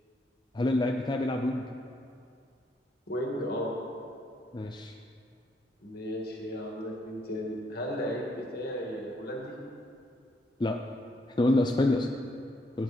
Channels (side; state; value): both; normal; correlation 0.72